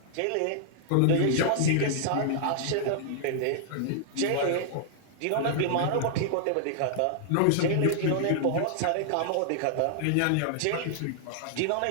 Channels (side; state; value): both; different; correlation -0.01